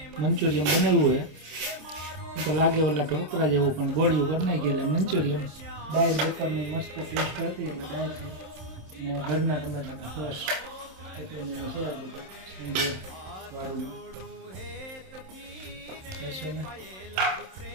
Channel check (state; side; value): late; left; 27 ms